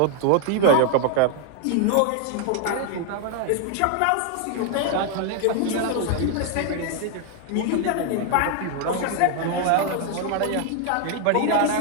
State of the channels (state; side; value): different; both; correlation 0.00